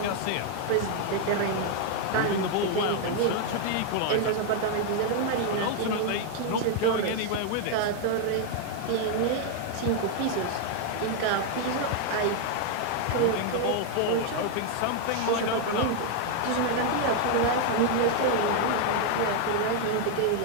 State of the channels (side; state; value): both; different; correlation 0.00